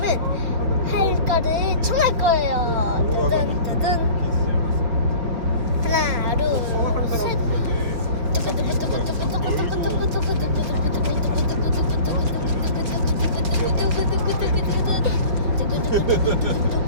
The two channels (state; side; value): late; left; 4.8 ms